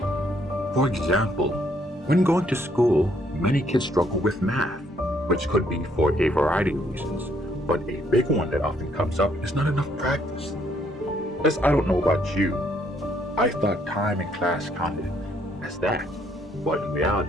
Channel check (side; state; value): both; normal; correlation 0.69